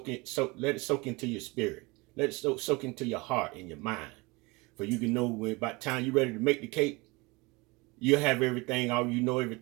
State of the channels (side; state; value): left; quieter; 25.0 dB